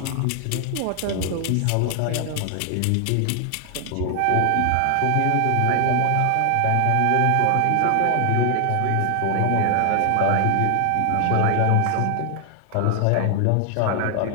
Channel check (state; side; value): different; both; correlation 0.00